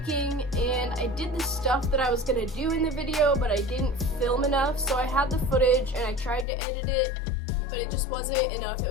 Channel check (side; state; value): right; drops out; at 6.5 s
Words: and I did the stuff that I was gonna do in the video, but I didn't film enough, so I had the footage and I tried to edit it, but it just wasn't enough. It